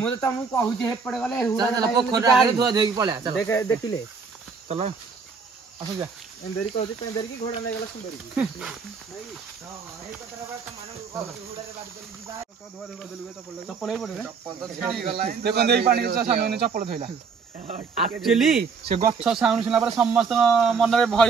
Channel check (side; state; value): left; quieter; 5.3 dB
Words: ତ ତମକୁ କହୁଛି ହେପଟେ ଗଲେ ପୋଖରୀ ଆଗରେ ଧୁଆ ଧୋଇକି ପଳେଆ ଦେଖିଲେ ଚଲ ଆସ ଯା ଏନ୍ଦେରି କହୁଛି ପେନ୍ଦେରି କି ଘୋଡ଼ା ନେଇଗଲା ସୁନ୍ଦରୀ କି ଚପଲ ଏଇ ପଟେ ଦେଖନ୍ତୁ ଏଇ ପାଣି ସାନୁ ଚପଲ ଥୋଇଲା ଆକ୍ଚୁଆଲି ସେ ଗଛ ସାଉଣ୍ଡ ଶୁଣିଲା ପରେ ସମସ୍ତଙ୍କ ମନରେ